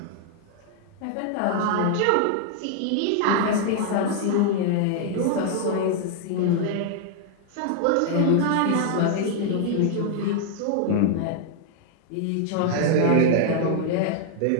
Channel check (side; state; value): both; different; correlation -0.01